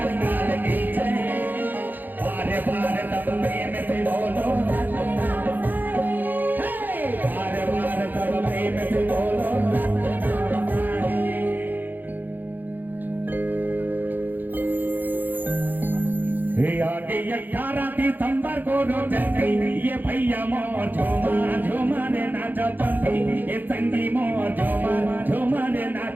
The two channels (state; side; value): late; left; 0.087 ms